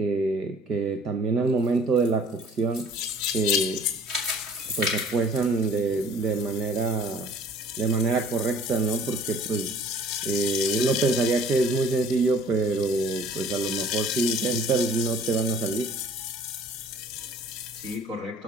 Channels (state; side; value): normal; both; correlation 0.52